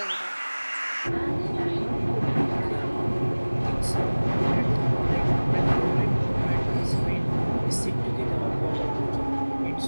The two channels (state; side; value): inverted; both; correlation -1.00